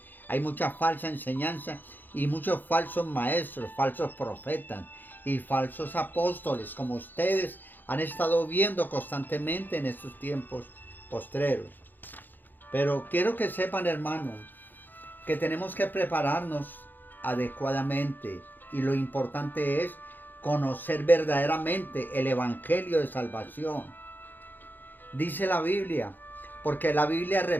Hay mucha falsa enseñanza y muchos falsos maestros, falsos profetas y falsos apóstoles, como ustedes han estado viendo constantemente en estos tiempos postreros. Pero quiero que sepan, hermanos, que tenemos que prepararnos adecuadamente, y lo importante es conocer verdaderamente el evangelio de salvación. Dice la Biblia, porque la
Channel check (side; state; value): right; late; 0.088 ms